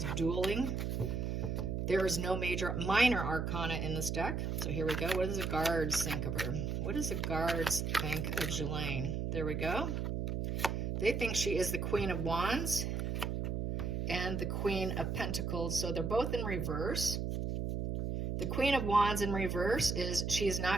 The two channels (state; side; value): noise; right; hum, 1 dB below the sound